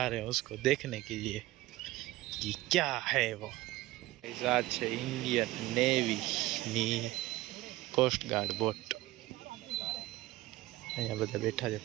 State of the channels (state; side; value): quieter; left; 17.8 dB